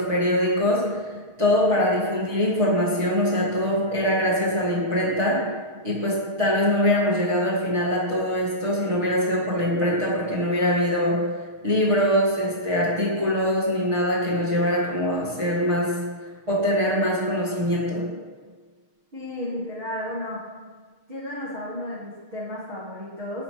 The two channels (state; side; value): late; left; 6.4 ms